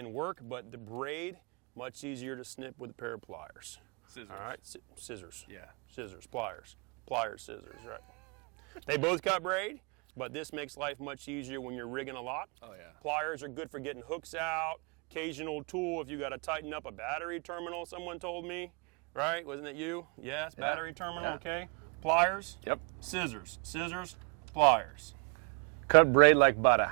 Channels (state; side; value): quieter; left; 34.0 dB